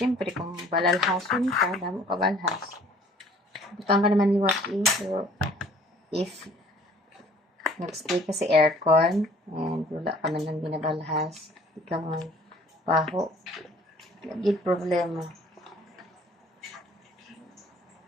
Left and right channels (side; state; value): both; normal; correlation 0.54